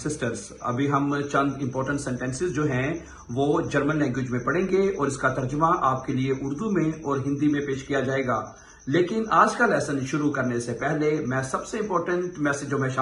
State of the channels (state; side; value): identical; both; correlation 1.00